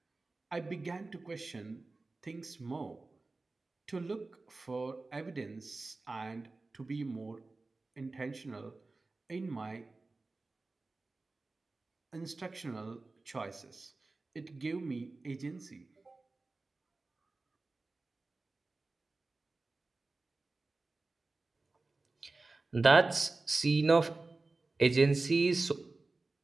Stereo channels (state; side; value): quieter; left; 3.4 dB